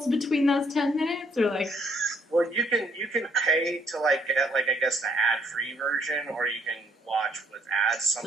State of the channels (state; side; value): normal; both; correlation 0.67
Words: between those 10 minutes, or, like? Well, you can pay to, like, get, like, I guess the ad-free version, or you can watch with ads,